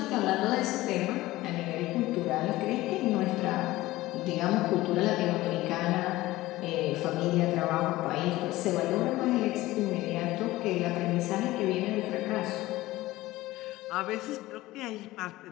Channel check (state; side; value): quieter; right; 17.7 dB